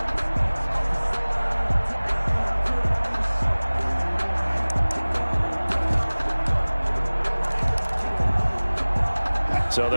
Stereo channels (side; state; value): both; inverted; correlation -1.00